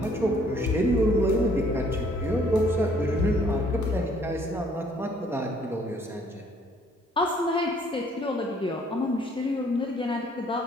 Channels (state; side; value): normal; both; correlation 0.62